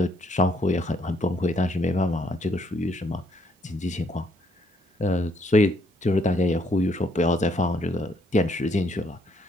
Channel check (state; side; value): normal; both; correlation 0.70